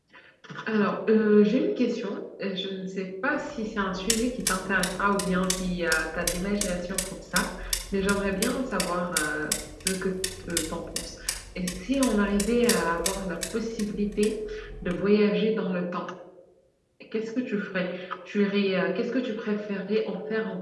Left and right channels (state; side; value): identical; both; correlation 1.00